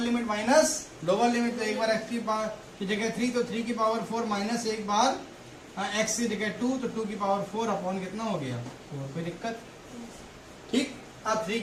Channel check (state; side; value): identical; both; correlation 1.00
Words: minus lower limit, तो एक बार x की पावर की जगह 3, तो 3 की पावर 4 माइनस एक बार x की जगह 2, तो 2 की पावर 4 अपॉन कितना हो गया 4, कोई दिक्कत, ठीक। अब 3